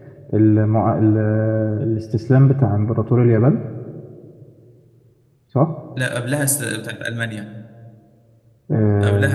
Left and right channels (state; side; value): identical; both; correlation 1.00